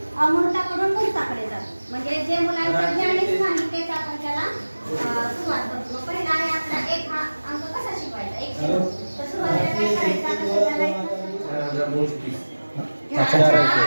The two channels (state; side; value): inverted; both; correlation -1.00